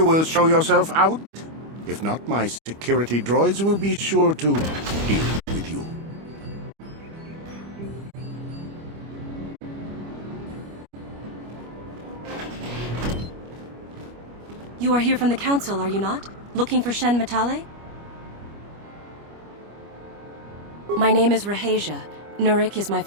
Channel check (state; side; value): late; left; 25 ms